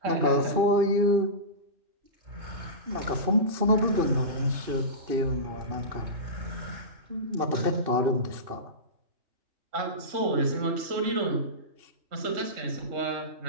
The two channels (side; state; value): left; late; 2.6 ms